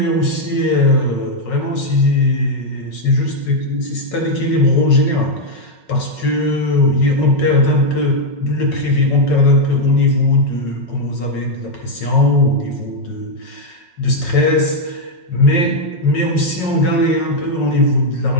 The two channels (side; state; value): right; late; 5.4 ms